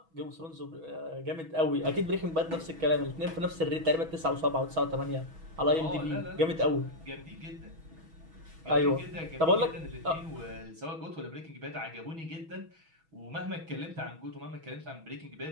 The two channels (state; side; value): late; left; 6.2 ms